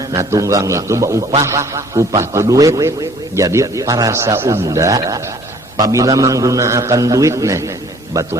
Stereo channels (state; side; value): normal; both; correlation 0.55